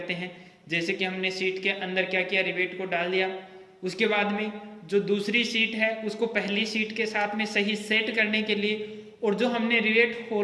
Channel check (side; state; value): both; identical; correlation 1.00